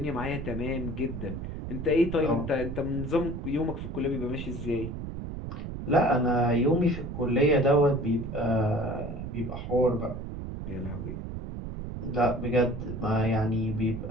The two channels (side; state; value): right; noise; rumble, 7 dB below the sound